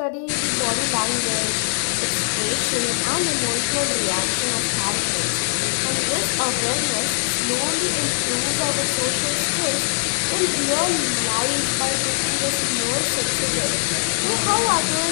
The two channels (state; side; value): silent; right; digital silence